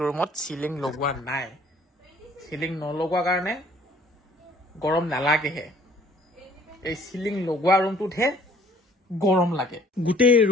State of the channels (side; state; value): both; normal; correlation 0.57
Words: ৰুমত চিলিং লগোৱা নাই। চিলিং নলগোৱা কাৰণে গৰম নালাগেহে, এই চিলিং লগোৱা ৰুমটোতহে গৰম লাগে। গোটেই